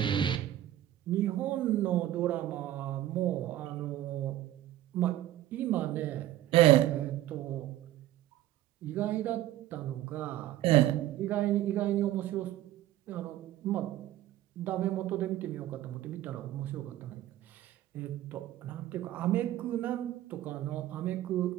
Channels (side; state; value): left; quieter; 13.8 dB